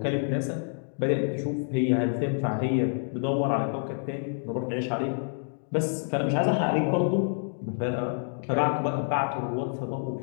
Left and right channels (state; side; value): silent; right; digital silence